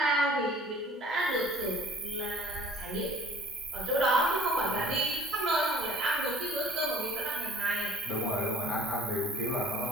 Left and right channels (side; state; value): both; normal; correlation 0.53